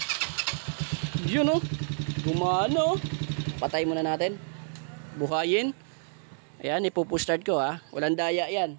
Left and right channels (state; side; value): silent; left; 59 dB below the other